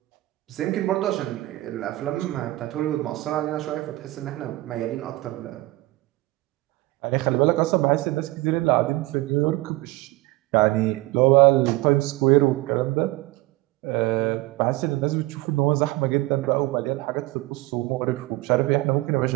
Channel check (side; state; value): left; quieter; 19.7 dB